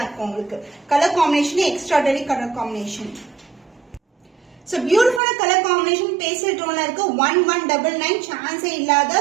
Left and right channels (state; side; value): drops out; left; at 5.2 s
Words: இருக்கும் உங்களுக்கு. Colour combination extraordinary colour combination. So beautiful color combination pastel tone இருக்கு. 1199 சான்ஸே